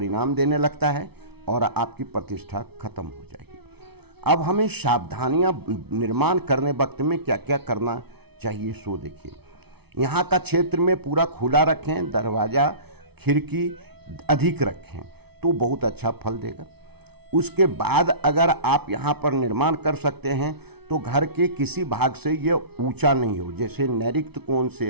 देने लगता है और आपकी प्रतिष्ठा खत्म हो जाएगी। अब हमें सावधानियां निर्माण करने वक्त में क्या क्या करना चाहिए सो देखिए। यहाँ का क्षेत्र में पूरा खुला रखें, दरवाज़ा खिड़की अधिक रखें तो बहुत अच्छा फल देगा। उसके बाद अगर आप यहाँ पर निर्माण कर सकते हैं तो घर के किसी भाग से ये ऊंचा नहीं हो, जैसे नैऋत्य कोण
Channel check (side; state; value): left; late; 0.98 ms